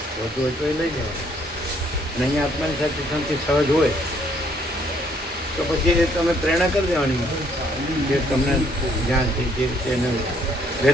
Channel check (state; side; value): normal; both; correlation 0.66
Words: વધુ હોય તો એ લઈ જવાનું. અને અહીંયા આત્માની સાચી શાંતિ સહજ હોય તો પછી એ તમે પ્રેરણા કરી દેવાની, જે તમને જ્યાંથી જે રીતે એને